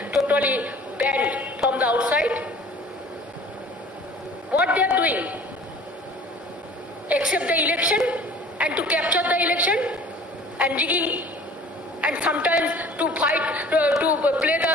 totally banned from the outside. What they are doing? Accept the election and to capture the election and rigging and sometimes to fight, to play the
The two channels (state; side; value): normal; both; correlation 0.47